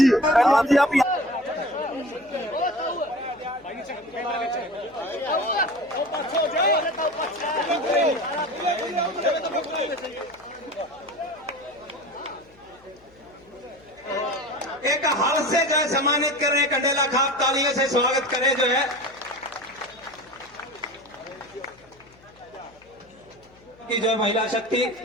एक हाल से जो है सम्मानित कर रहे हैं कंडेला खाप, तालियों से स्वागत करें जो है कि जो महिला शक्ति,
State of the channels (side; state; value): left; noise; hum, 28 dB below the sound